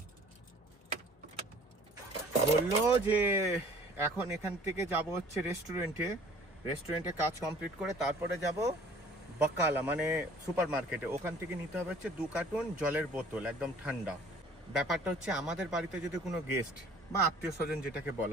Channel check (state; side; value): normal; both; correlation 0.52